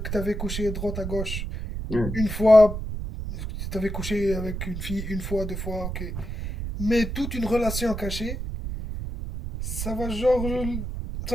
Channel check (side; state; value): right; noise; rumble, 5 dB below the sound